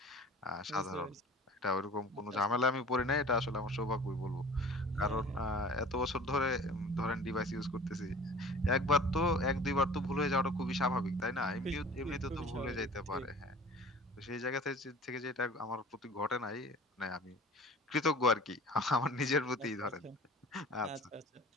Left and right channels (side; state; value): both; normal; correlation 0.44